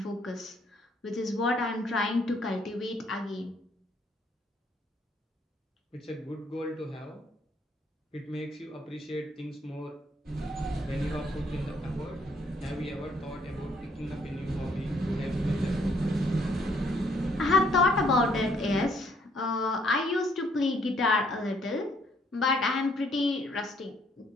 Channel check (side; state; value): both; normal; correlation 0.67